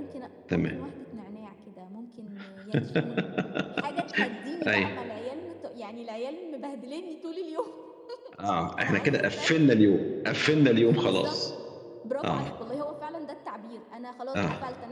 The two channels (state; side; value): identical; both; correlation 1.00